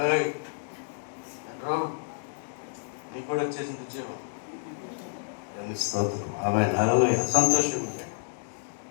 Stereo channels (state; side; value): silent; right; digital silence